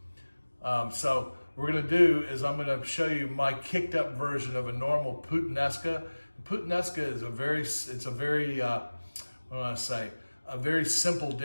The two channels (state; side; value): inverted; both; correlation -1.00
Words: So what we're going to do is I'm going to show you my kicked up version of a normal Puttinesca. Puttinesca is a very a very simple